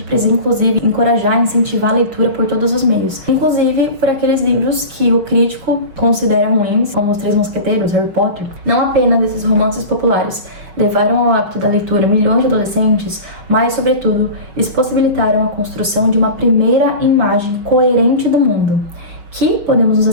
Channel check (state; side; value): late; left; 6.0 ms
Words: precisa, inclusive, encorajar e incentivar a leitura por todos os meios, inclusive por aqueles livros que o crítico considera ruins, como Os Três Mosqueteiros, Harry Potter. Não apenas esses romances populares levaram ao hábito da leitura milhões de adolescentes, mas, sobretudo, eles possibilitaram a construção de uma primeira imagem coerente do mundo, que, podemos nos